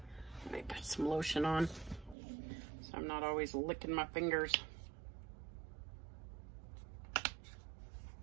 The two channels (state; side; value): drops out; left; at 2.1 s